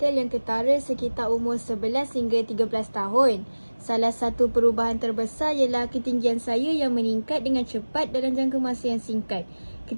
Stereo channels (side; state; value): both; inverted; correlation -1.00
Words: yang ketara sekitar umur 11 hingga 13 tahun. Salah satu perubahan terbesar ialah ketinggian saya yang meningkat dengan cepat dalam jangka masa yang singkat.